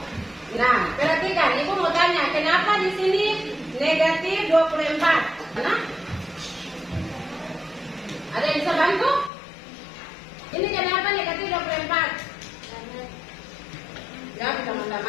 Nah, perhatikan, Ibu mau tanya, kenapa di sini negatif 24? Mana? Ada yang bisa bantu? Ini kenapa negatif 24? Jawab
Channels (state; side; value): drops out; right; at 9.3 s